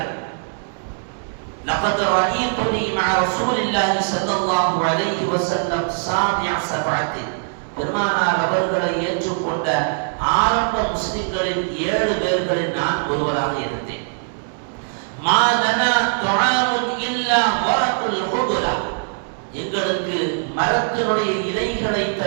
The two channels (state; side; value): silent; left; 65 dB below the other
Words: لقد رأيتني مع رسول الله صلى الله عليه وسلم سابع سبعة. பெருமானார் அவர்களை ஏற்றுக்கொண்ட ஆரம்ப முஸ்லிம்களில் 7 பேர்களில் நான் ஒருவராக இருந்தேன். மா லனா துஆமுன் இல்லா வரகுல் ஹுபுரா. எங்களுக்கு மரத்தினுடைய இலைகளை